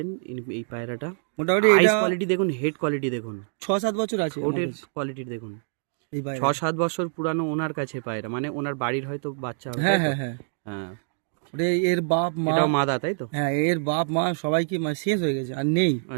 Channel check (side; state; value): left; silent; digital silence